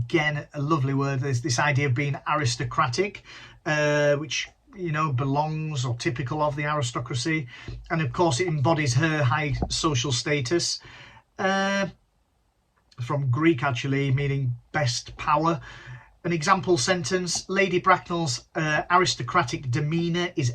a lovely word, is this idea of being aristocratic, which, you know, belongs or typical of the aristocracy. And of course, it embodies her high social status. From Greek, actually, meaning best power. An example sentence: Lady Bracknell's aristocratic demeanour is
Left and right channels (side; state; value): both; identical; correlation 1.00